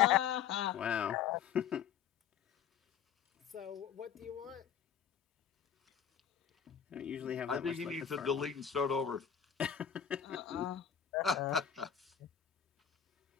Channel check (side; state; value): right; quieter; 8.7 dB